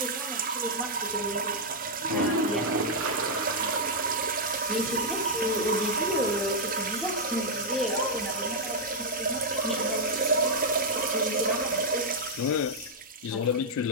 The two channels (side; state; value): both; normal; correlation -0.05